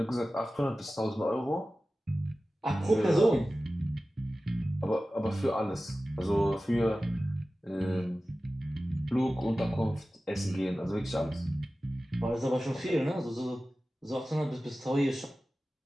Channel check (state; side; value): normal; both; correlation 0.95